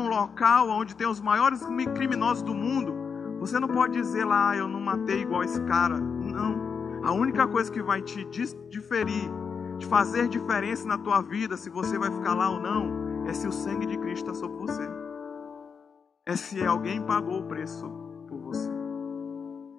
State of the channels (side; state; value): right; quieter; 6.1 dB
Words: local onde tem os maiores criminosos do mundo, você não pode dizer lá: eu não matei igual esse cara. Não. A única coisa que vai te diferir, de fazer diferença na tua vida, se você vai ficar lá ou não, é se o sangue de Cristo está sobre você. É se alguém pagou o preço por você.